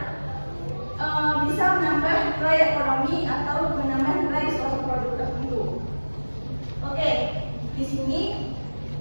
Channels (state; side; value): inverted; both; correlation -1.00